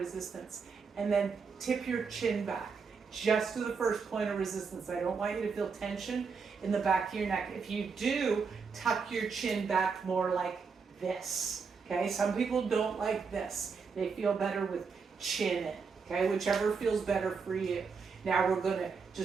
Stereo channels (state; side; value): quieter; left; 5.3 dB